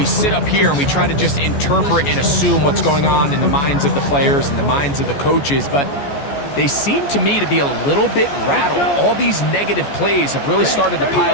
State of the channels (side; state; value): right; late; 14 ms